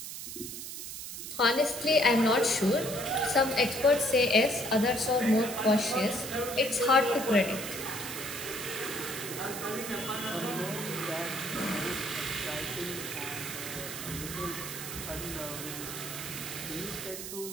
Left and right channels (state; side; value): noise; right; hiss, 8 dB below the sound